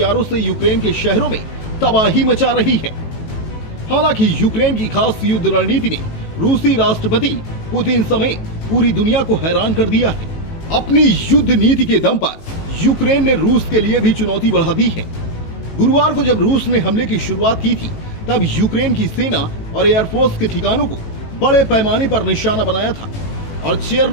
से यूक्रेन के शहरों में तबाही मचा रही है। हालांकि यूक्रेन की खास युद्ध रणनीति ने रूसी राष्ट्रपति पुतिन समेत पूरी दुनिया को हैरान कर दिया है। अपनी युद्ध नीति के दम पर यूक्रेन ने रूस के लिए भी चुनौती बढ़ा दी है। गुरुवार को जब रूस ने हमले की शुरुआत की थी, तब यूक्रेन की सेना और एयरफोर्स के ठिकानों को बड़े पैमाने पर निशाना बनाया था और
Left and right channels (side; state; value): right; late; 18 ms